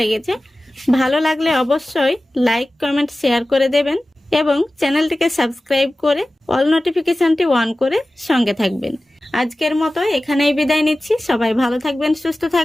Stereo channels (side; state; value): both; normal; correlation 0.96